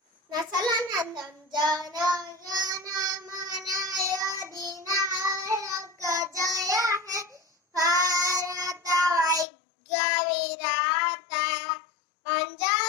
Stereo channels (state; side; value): drops out; right; at 9.5 s